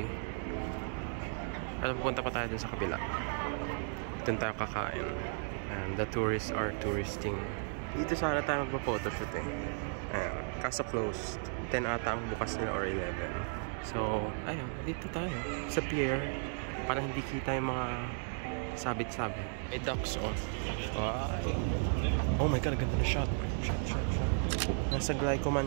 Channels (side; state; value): left; silent; 55 dB below the other